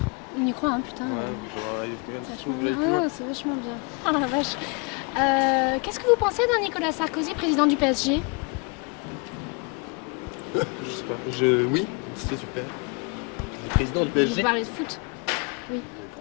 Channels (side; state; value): right; quieter; 32.4 dB